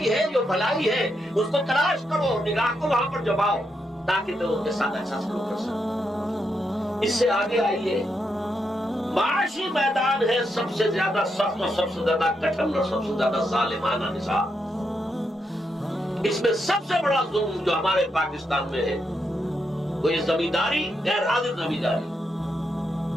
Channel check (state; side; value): normal; both; correlation 0.82